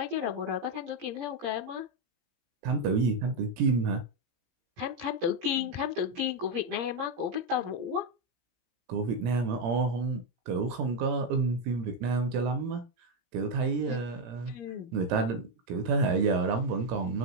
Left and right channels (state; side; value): late; left; 17 ms